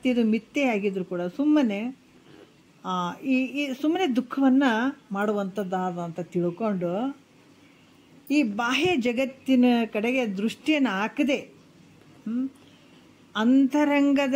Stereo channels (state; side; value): identical; both; correlation 1.00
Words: ಮಿಥ್ಯೆಯಾಗಿದ್ರು ಕೂಡ ಸುಮ್ಮನೆ ಸುಮ್ಮನೆ ದುಃಖವನ್ನು ಮಾಡುವಂಥದ್ದಾದ ಅಂತ ತಿಳ್ಕೊಂಡು ಈ ಬಾಹ್ಯ ಜಗತ್ತಿನ ಕಡೆಗೆ ದೃಷ್ಟಿಯನ್ನು ಹಾಕದೆ